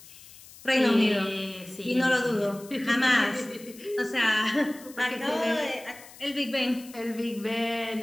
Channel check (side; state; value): left; noise; hiss, 20 dB below the sound